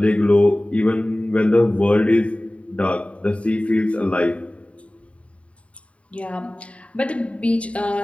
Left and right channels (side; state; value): right; late; 0.063 ms